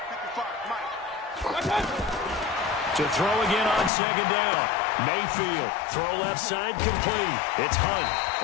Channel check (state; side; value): drops out; right; at 3.9 s